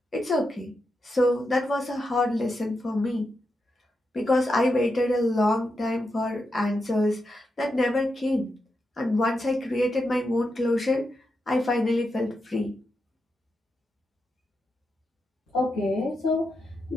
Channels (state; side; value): normal; both; correlation 0.86